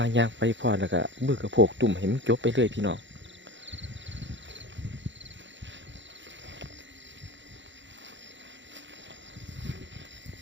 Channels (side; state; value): left; late; 0.54 ms